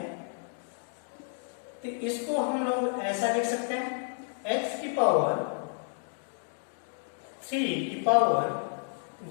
तो इसको हम लोग ऐसा लिख सकते हैं, x की पावर 3 की पावर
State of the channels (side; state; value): right; silent; 57 dB below the other